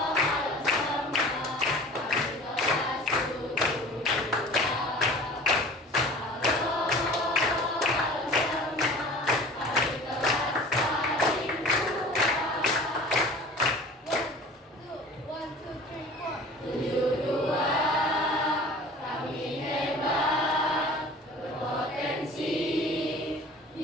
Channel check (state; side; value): normal; both; correlation 0.42